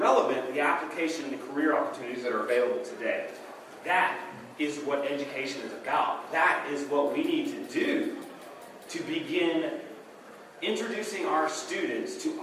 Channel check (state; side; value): identical; both; correlation 1.00